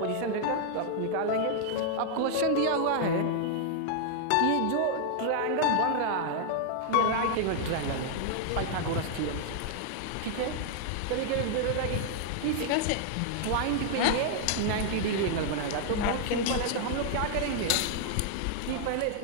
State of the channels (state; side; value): different; both; correlation -0.01